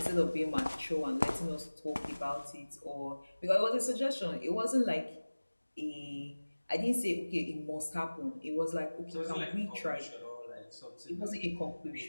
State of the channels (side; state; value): both; inverted; correlation -1.00